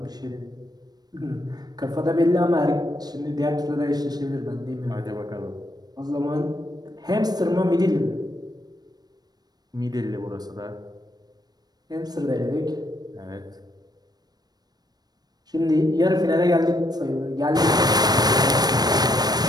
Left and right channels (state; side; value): late; left; 0.19 ms